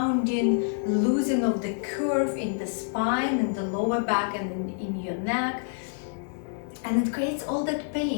loosening of the curve in the spine, in the lower back, and in your neck. And it creates all that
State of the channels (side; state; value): right; silent; digital silence